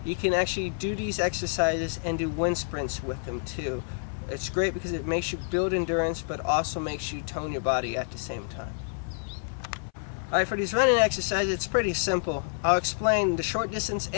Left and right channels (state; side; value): silent; right; 59 dB below the other